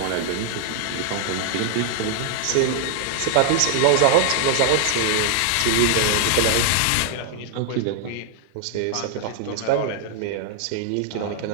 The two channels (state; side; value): different; both; correlation 0.00